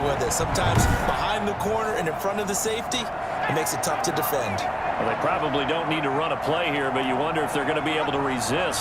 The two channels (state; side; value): identical; both; correlation 1.00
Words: it, sometimes behind the corner and in front of the safety, it makes it tough to defend. Well, they probably don't need to run a play here, but you wonder if they're going to be able to